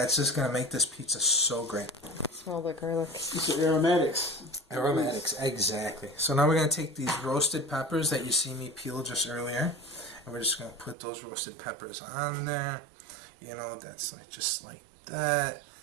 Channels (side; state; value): left; drops out; at 11.0 s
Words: just going to make this pizza so great. Smell the garlic. It's aromatics. Aromatics, exactly. So now we're going to take these roasted peppers that you see me peel just earlier. And we're just going to put those roasted peppers on there. You know, that's like just like that.